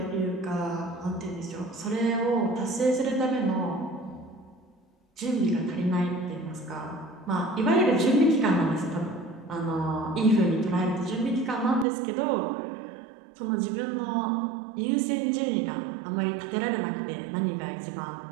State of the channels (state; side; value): drops out; left; at 11.9 s